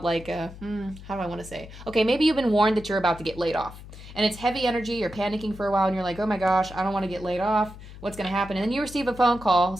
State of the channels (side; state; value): left; noise; hum, 15 dB below the sound